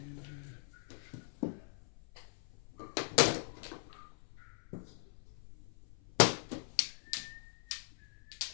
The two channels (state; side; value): silent; right; 51 dB below the other